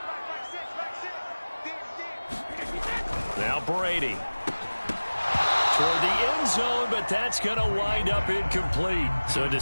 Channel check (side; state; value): both; inverted; correlation -1.00